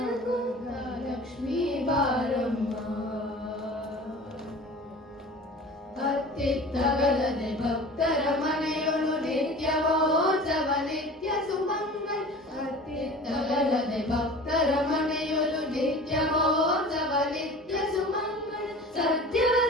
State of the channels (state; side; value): normal; both; correlation 0.40